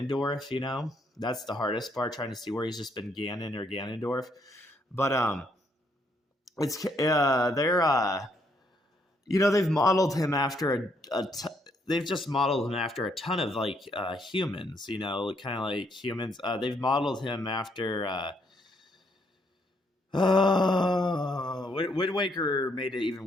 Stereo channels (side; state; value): both; normal; correlation 0.72